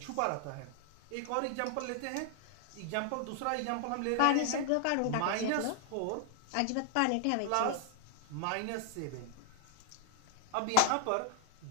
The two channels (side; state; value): both; different; correlation 0.00